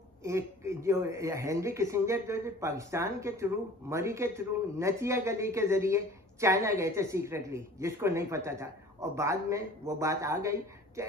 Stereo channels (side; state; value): both; normal; correlation 0.46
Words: एक जो हेनरी किसिंजर जो पाकिस्तान के थ्रू, मरी के थ्रू, नथिया गली के जरिए चाइना गए थे सीक्रेटली, जिसको नहीं पता था, और बाद में वो बात आ गई। तो